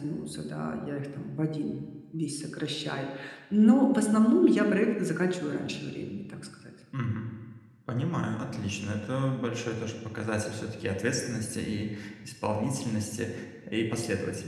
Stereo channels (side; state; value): both; identical; correlation 1.00